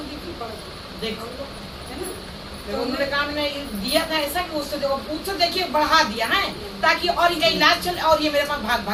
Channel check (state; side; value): identical; both; correlation 1.00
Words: दी थी, बढ़ देखो है ना। तो उन्होंने काम में दिया था ऐसा कि उससे देखिए बढ़ा दिया है ताकि और इनका इलाज चले और ये मेरे पास